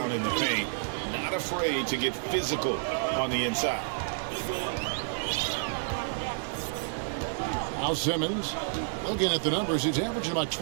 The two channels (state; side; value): silent; left; 58 dB below the other